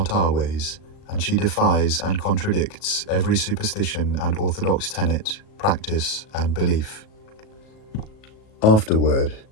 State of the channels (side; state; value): right; late; 37 ms